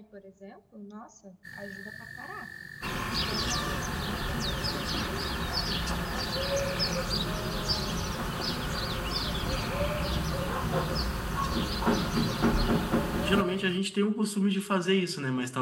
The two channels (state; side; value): identical; both; correlation 1.00